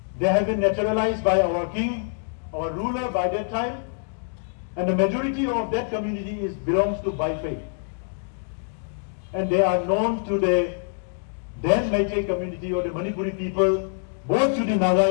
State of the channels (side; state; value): right; silent; 62 dB below the other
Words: They have been naturalized by our king, our ruler by that time, And the majority of that community belongs to Bai faith. And they are known to the then Meitei community or the Manipuri people, both to the Naga